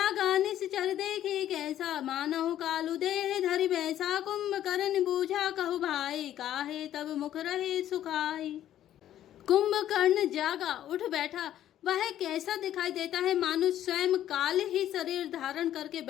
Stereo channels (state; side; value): quieter; right; 11.9 dB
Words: से चल देखे कैसा, मानहु कालू देह धरि बैसा, कुंभकर्ण बूझा कहु भाई, काहे तब मुख रहे सुखाई। कुंभकर्ण जागा, उठ बैठा। वह कैसा दिखाई देता है, मानो स्वयं काल ही शरीर धारण करके